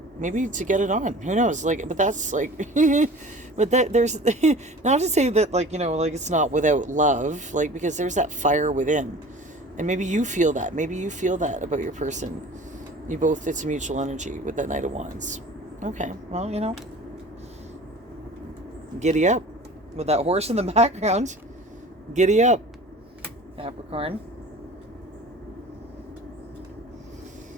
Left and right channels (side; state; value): both; normal; correlation 0.42